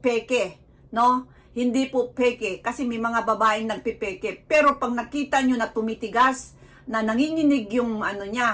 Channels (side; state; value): both; identical; correlation 1.00